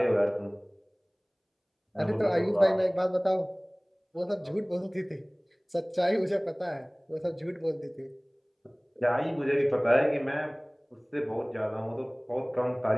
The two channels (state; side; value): identical; both; correlation 1.00